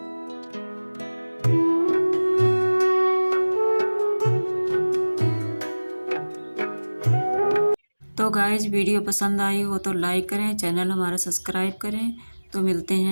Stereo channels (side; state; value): both; inverted; correlation -1.00